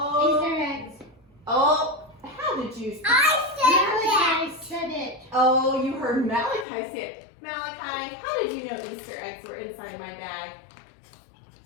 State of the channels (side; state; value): right; drops out; at 6.7 s